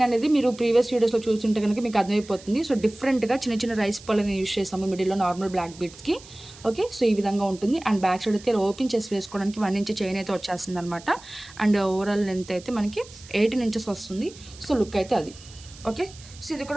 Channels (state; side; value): noise; right; hiss, 20 dB below the sound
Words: అనేది మీరు ప్రీవియస్ వీడియోస్లో చూస్తుంటే కనుక మీకు అర్థమైపోతుంది. సో డిఫరెంట్గా చిన్న చిన్న రైస్ పళ్ళని యూజ్ చేసాము మిడిల్లో నార్మల్ బ్లాక్ బీడ్స్కి. ఓకే, సో ఈ విధంగా ఉంటుంది. అండ్ బ్యాక్ సైడ్ అయితే ఓపెన్ చేసి వేసుకోవడానికి 1 ఇంచ్ చైన్ అయితే వచ్చేస్తుంది అనమాట. అండ్ ఓవరాల్ లెంత్ అయితే మనకి 18 ఇంచెస్ వస్తుంది. సో లుక్ అయితే అది. ఓకే, సో ఇది